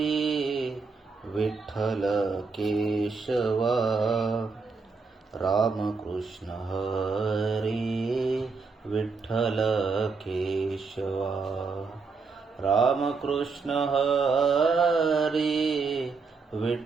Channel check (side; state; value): left; quieter; 4.6 dB